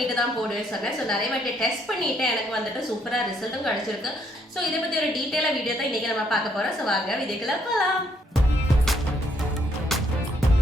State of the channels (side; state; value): both; normal; correlation 0.71